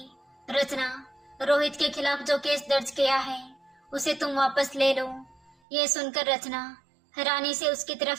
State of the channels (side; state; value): left; drops out; at 5.6 s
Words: रचना, रोहित के खिलाफ जो केस दर्ज किया है उसे तुम वापस ले लो। ये सुनकर रचना हैरानी से उसकी